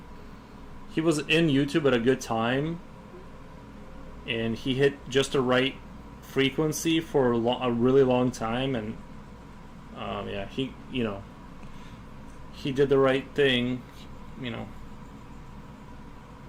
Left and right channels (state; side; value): identical; both; correlation 1.00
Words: he was in YouTube at a good time, and he hit just the right frequency for a really long time, and he did the right thing,